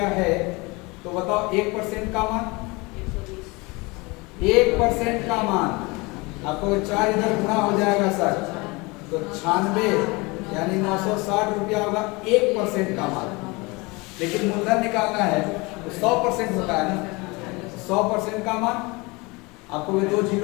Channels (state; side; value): quieter; right; 25.5 dB